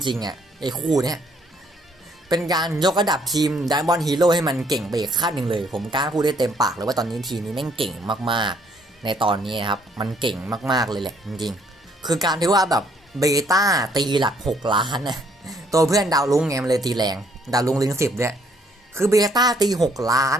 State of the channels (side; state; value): both; normal; correlation 0.66